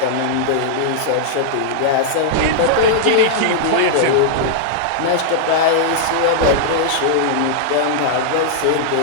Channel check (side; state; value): both; different; correlation -0.01